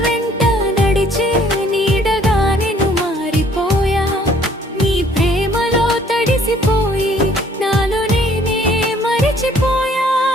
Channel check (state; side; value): normal; both; correlation 0.60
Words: వెంట నడిచే నీడగా నేను మారిపోయా. నీ ప్రేమలో తడిసిపోయి నాలో నేనే మరిచిపోయా.